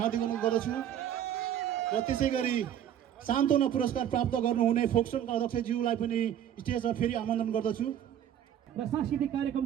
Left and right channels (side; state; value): left; quieter; 10.2 dB